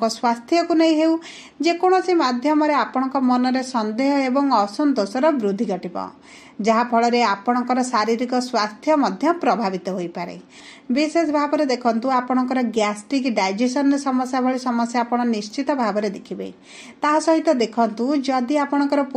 स्वास्थ्य को नहीं हेउ, जे कोनोसी माध्यम रे आपणक मन रे संदेह एवं असंतोषर वृद्धि घटिबो, जहा फल रे आपणकर शारीरिक स्वास्थ्य मध्य प्रभावित होई पारे। विशेष भाव रे देखंतु आपणकर गैस्ट्रिक डाइजेशन समस्या भली समस्या आपण निश्चित भाव रे देखिबे। ता सहित देखंतु जदि आपणकर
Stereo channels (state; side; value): identical; both; correlation 1.00